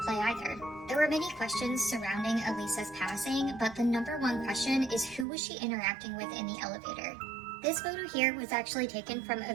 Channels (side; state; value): left; drops out; at 5.2 s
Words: play either. There were many questions surrounding Elisa's passing, but the number one question is who was she interacting with in the elevator? This photo here was actually taken from a